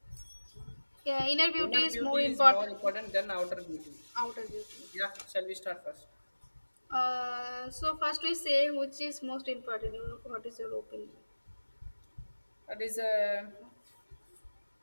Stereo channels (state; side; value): inverted; both; correlation -1.00